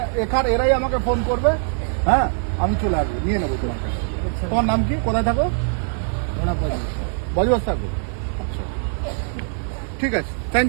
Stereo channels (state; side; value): silent; left; digital silence